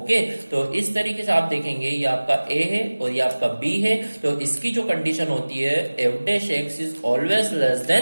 तो इस तरीके से आप देखेंगे ये आपका ए है और ये आपका बी है। तो इसकी जो कंडीशन होती है f dash x is always less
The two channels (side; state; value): both; inverted; correlation -1.00